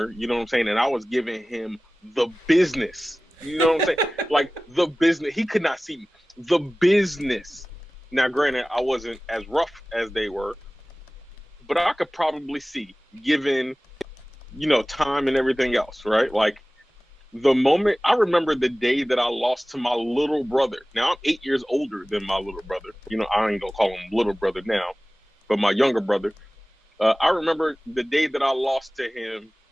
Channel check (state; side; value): normal; both; correlation 0.97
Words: you know what I'm saying? And I was giving him the business. You know what I'm saying? Like the business. He could not see me. The business. Now, granted, I wasn't as rough as they were, but I could probably see, given, time and everything else, right? Like, the moment I remember the day that I lost to my little brother. Now I'm 8 years older than my little brother. I ain't gonna call him little brother now, but my younger brother. I remember the day that I lost to him